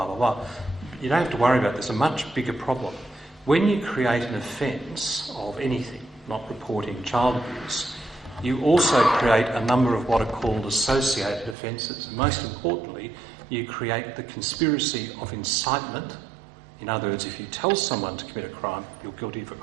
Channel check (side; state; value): left; drops out; at 11.6 s